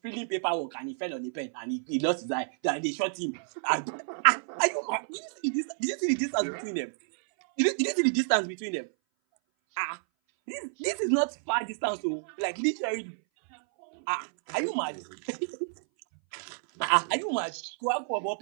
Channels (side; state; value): left; silent; 58 dB below the other